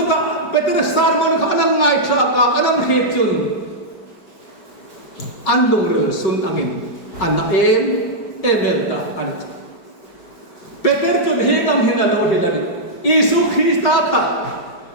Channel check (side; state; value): right; late; 4.8 ms